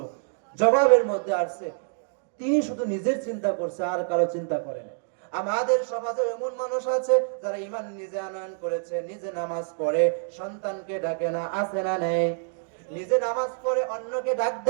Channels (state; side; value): silent; left; digital silence